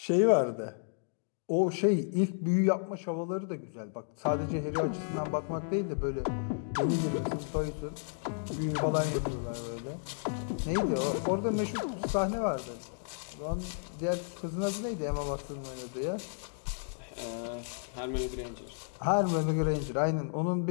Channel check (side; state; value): right; silent; digital silence